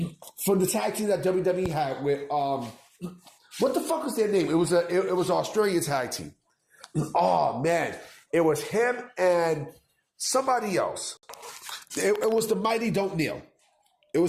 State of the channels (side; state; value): both; identical; correlation 1.00